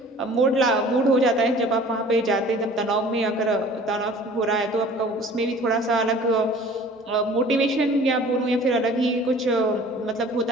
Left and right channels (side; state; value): both; normal; correlation 0.47